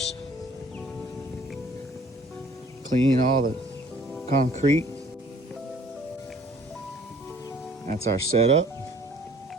clean all the concrete. That's our setup.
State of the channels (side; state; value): both; normal; correlation 0.55